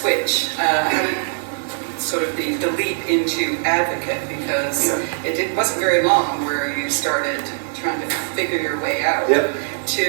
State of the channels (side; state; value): left; silent; digital silence